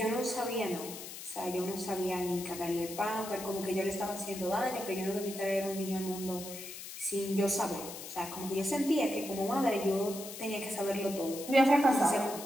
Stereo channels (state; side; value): noise; left; hiss, 11 dB below the sound